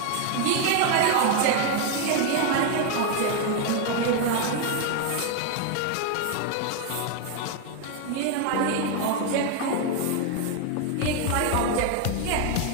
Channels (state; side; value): different; both; correlation 0.01